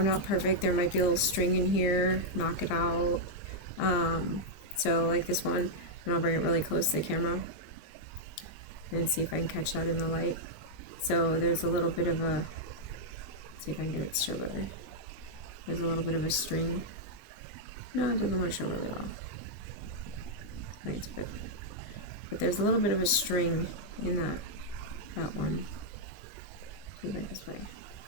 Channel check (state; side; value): late; right; 20 ms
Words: not perfect. There might be a little string in here. Knock it out. So like this one, and I'll bring it really close to the camera and see if I can catch that in the light. So there's a little bit of a, see if I can get it to show better. There's a little bit of a string. No, it doesn't want to show really well. But there's a little bit of a string in that one. See that this way.